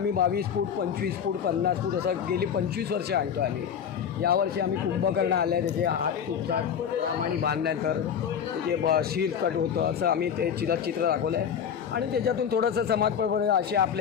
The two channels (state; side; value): quieter; right; 8.0 dB